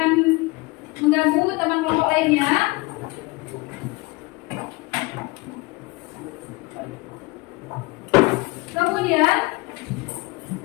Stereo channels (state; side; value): quieter; right; 24.3 dB